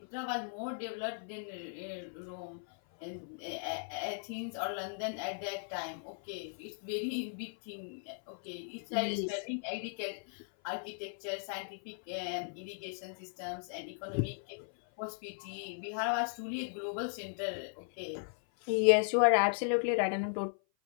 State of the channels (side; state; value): right; silent; 53 dB below the other